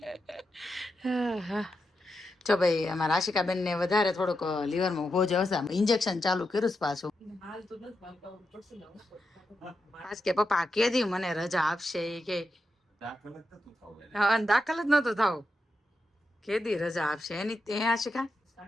જો ભાઈ અમારા આશિકાબેન ને વધારે થોડુંક લીવરમાં હોજ આવશે. ઇન્જેક્શન ચાલુ કર્યું પાછું. આજ કે પપ્પા કેદી મને રજા આપશે કે દાખલ જ નતો થવું. કેદી રજા આપશે એની ત્યાં આશિકા?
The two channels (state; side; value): normal; both; correlation 0.87